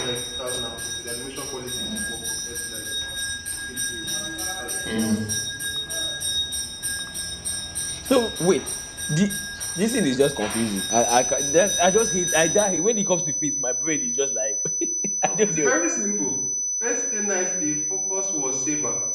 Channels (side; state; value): both; identical; correlation 1.00